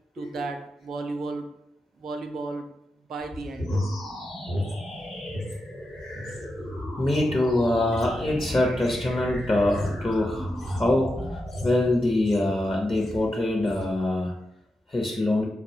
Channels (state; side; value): normal; both; correlation 0.88